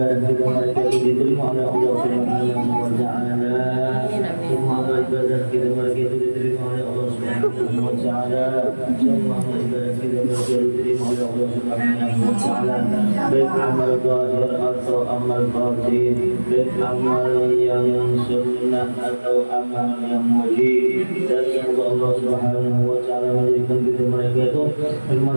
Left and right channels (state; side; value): inverted; both; correlation -1.00